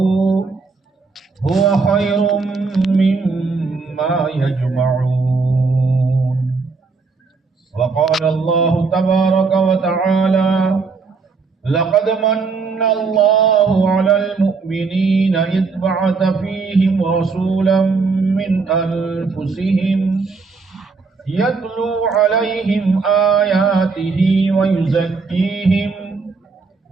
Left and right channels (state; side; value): quieter; left; 4.5 dB